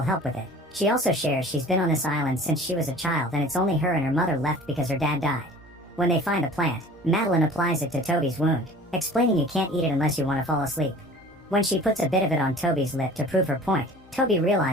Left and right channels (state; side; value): normal; both; correlation 0.45